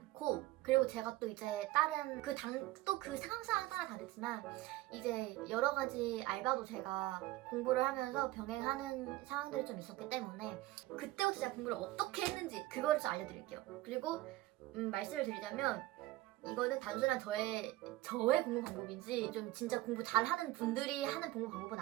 그리고 제가 또 이제 다른 그 상황 따라 다르지만 이제 여러 가지 알바도 제가 공부를 하면서 병행하는 상황들이 좀 있었기 때문에 그때부터 제가 공부를 어떻게 했는지 그거를 좀 알려드릴게요. 그리고 말씀을 드리자면, 이거는 단순한 저의 공부 방법인지 좀 진짜 공부 잘하는 분들이 하는 공부 방법은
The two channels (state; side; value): quieter; left; 17.2 dB